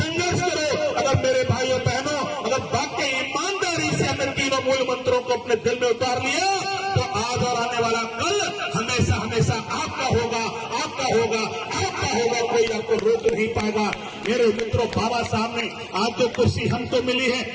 करो। अगर मेरे भाइयों बहनों, अगर वाकई ईमानदारी से हमने 3 मूल मंत्रों को अपने दिल में उतार लिया, तो आज और आने वाला कल हमेशा हमेशा आपका होगा, आपका होगा, आपका होगा, कोई आपको रोक नहीं पाएगा। मेरे मित्रों, बाबा साहब ने आज जो कुर्सी हमको मिली है,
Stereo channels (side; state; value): both; identical; correlation 1.00